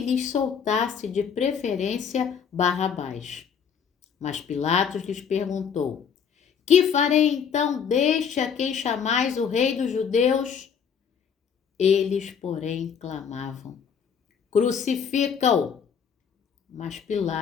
lhes soltasse de preferência Barrabás. Mas Pilatos lhes perguntou: Que farei então deste a quem chamais o rei dos judeus? Eles, porém, clamavam: Crucifica-o! Mas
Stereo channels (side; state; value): right; quieter; 7.0 dB